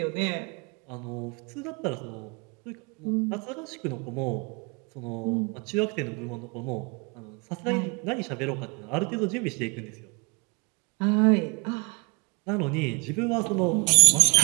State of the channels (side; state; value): left; quieter; 30.6 dB